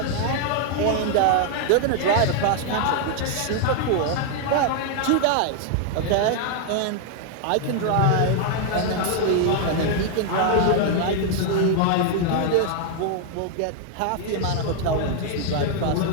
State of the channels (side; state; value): both; different; correlation 0.00